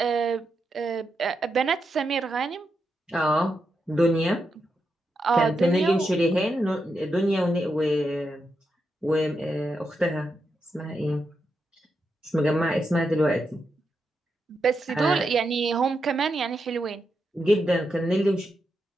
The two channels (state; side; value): normal; both; correlation 0.85